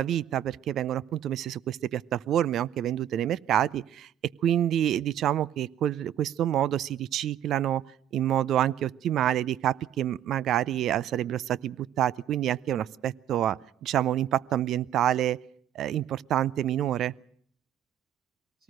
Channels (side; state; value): left; quieter; 10.9 dB